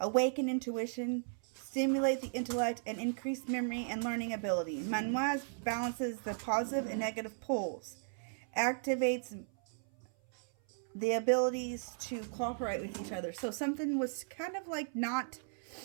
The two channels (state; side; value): silent; left; 54 dB below the other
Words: intuition, stimulate the intellect, and increase memory and learning ability. Manwaz balances the positive and negative poles, activates the abilities to cooperate with each other. So something was kind of like not,